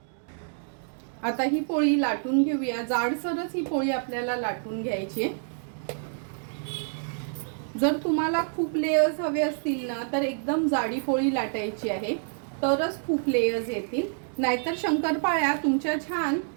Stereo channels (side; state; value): left; silent; digital silence